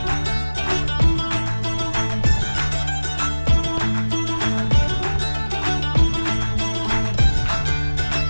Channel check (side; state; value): both; inverted; correlation -1.00